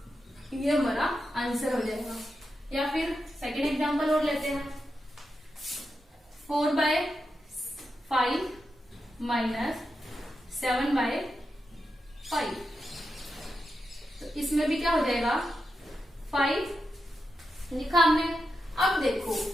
ये हमारा आंसर हो जाएगा। या फिर सेकेंड एग्जांपल और लेते हैं, 4/5 माइनस 7/5। तो इसमें भी क्या हो जाएगा, 5 लिखा हमने। अब देखो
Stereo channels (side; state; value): both; normal; correlation 0.87